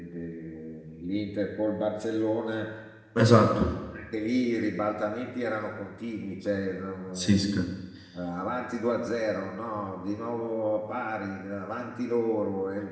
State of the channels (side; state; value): both; identical; correlation 1.00